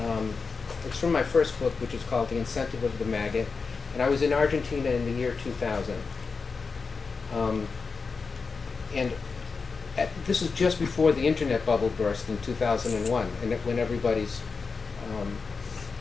it's from my first book, which is called The Incentive of the Maggot. And I was in Argentina in the year 2000. This was just before the internet bubble burst in 2001, and when everybody's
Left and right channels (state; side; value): quieter; right; 4.8 dB